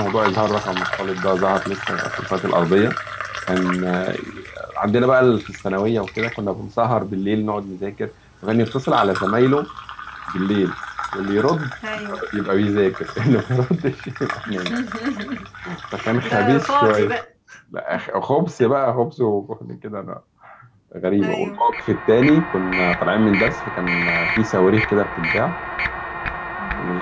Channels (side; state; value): both; identical; correlation 1.00